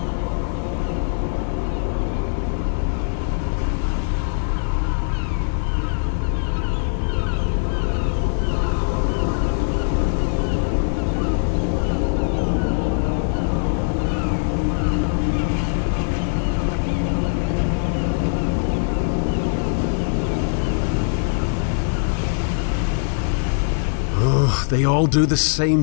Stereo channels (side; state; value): right; silent; 65 dB below the other